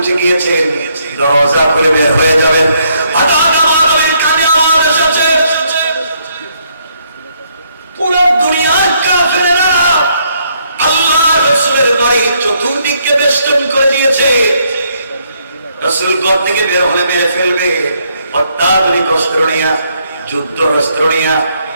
গিয়েছেন, দরজা খুলে বের হয়ে যাবেন। হঠাৎ আমার নবীর কানে আওয়াজ এসেছে, পুরো দুনিয়ার কাফেররা আল্লাহর রাসূলের বাড়ি চতুর্দিকে বেষ্টন করে দিয়েছে, রাসূল ঘর থেকে বের হলে মেরে ফেলবে, অত্যাধুনিক অস্ত্র নিয়ে, যুদ্ধ অস্ত্র নিয়ে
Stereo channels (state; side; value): inverted; both; correlation -0.71